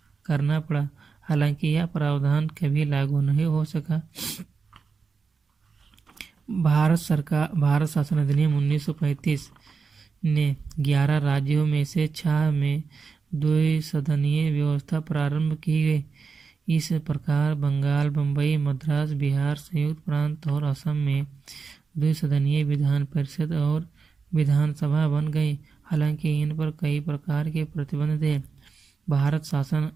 करना पड़ा। हालांकि यह प्रावधान कभी लागू नहीं हो सका। भारत शासन अधिनियम 1935 ने 11 राज्यों में से 6 में द्विसदनीय व्यवस्था प्रारंभ की गई। इस प्रकार बंगाल, बम्बई, मद्रास, बिहार, संयुक्त प्रांत और असम में द्विसदनीय विधान परिषद और विधानसभा बन गई। हालांकि इन पर कई प्रकार के प्रतिबंध थे। भारत शासन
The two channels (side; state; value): left; quieter; 5.1 dB